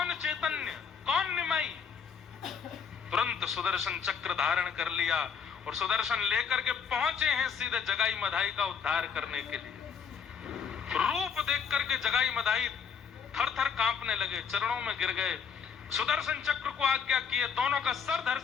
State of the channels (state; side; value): quieter; right; 6.7 dB